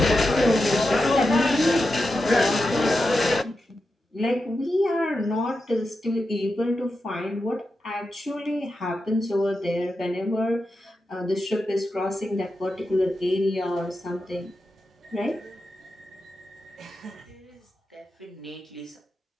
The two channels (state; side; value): normal; both; correlation 0.89